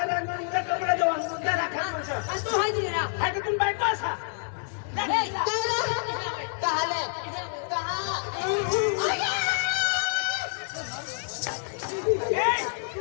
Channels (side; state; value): right; silent; 60 dB below the other